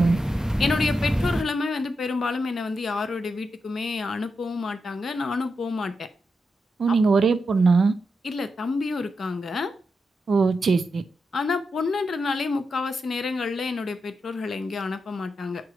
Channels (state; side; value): normal; both; correlation 0.86